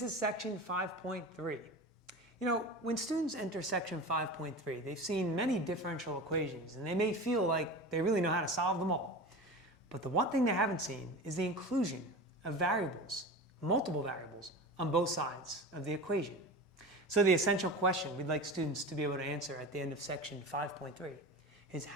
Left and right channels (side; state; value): both; normal; correlation 0.31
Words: section 5.3. You know, when students enter section 5.3, they've seen many differential equations, and they may feel like they really know how to solve them all. But the one thing they haven't seen is the inclusion of variables, multiple variables, on both sides of the equation. So the essential question we'd like students to be able to answer at the end of section 5.3 is,